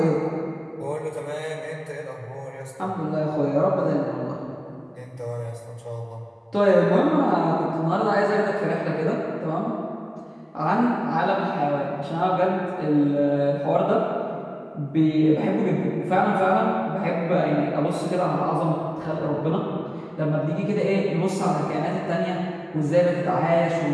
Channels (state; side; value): identical; both; correlation 1.00